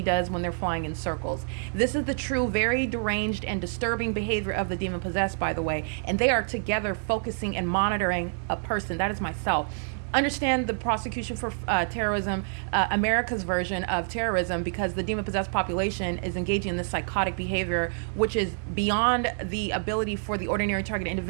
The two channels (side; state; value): left; silent; digital silence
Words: does when they're flying in circles. This is the true, very deranged and disturbing behavior of the demon possessed, by the way. And they are together focusing and monitoring a person. That is myself. Understand the prosecution for terrorism, America's version of terrorism, because the demon-possessed population is engaging in this psychotic behavior, which is beyond the ability for the ordinary target